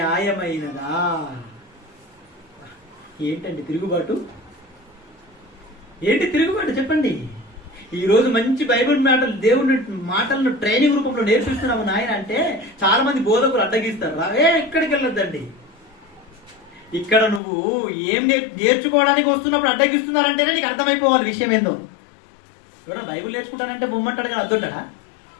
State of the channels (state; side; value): drops out; right; at 17.4 s